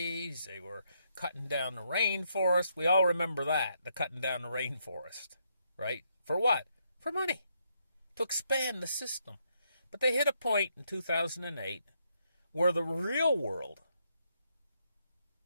they were cutting down the rainforest. We all remember that, the cutting down the rainforest, right? For what? For money, to expand the system. But they hit a point in 2008 where the real world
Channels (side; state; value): both; inverted; correlation -0.76